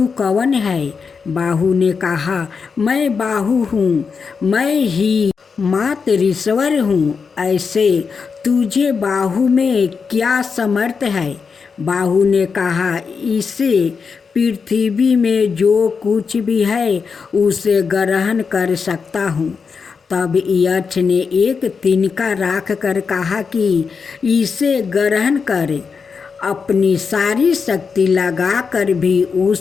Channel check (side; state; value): right; quieter; 5.5 dB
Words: कौन है? बाहु ने कहा, मैं बाहु हूँ, मैं ही मातरीश्वर हूँ। ऐसे तुझे बाहु में क्या समर्थ है? बाहु ने कहा, इसे पृथ्वी में जो कुछ भी है उसे ग्रहण कर सकता हूँ। तब यक्ष ने एक तिनका राख कर कहा कि इसे ग्रहण कर। अपनी सारी शक्ति लगाकर भी